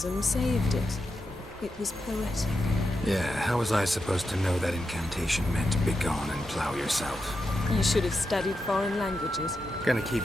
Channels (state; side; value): normal; both; correlation 0.87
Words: saved it. It was poetic. Yeah, how was I supposed to know that incantation meant begone and plow yourself? You should have studied foreign languages. Gonna keep